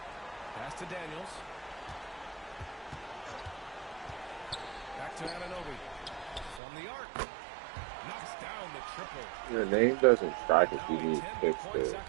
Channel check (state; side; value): drops out; left; at 6.6 s